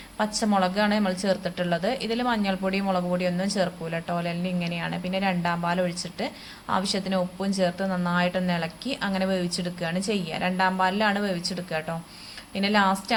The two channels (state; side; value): identical; both; correlation 1.00